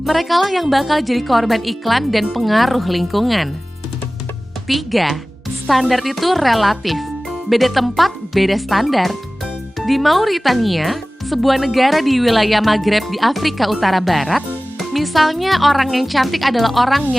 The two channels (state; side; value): normal; both; correlation 0.98